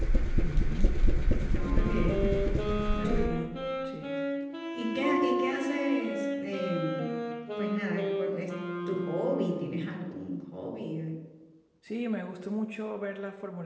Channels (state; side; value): identical; both; correlation 1.00